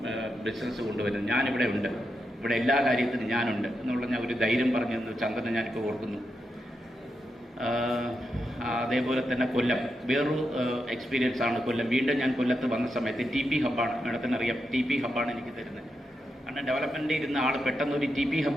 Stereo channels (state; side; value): normal; both; correlation 0.85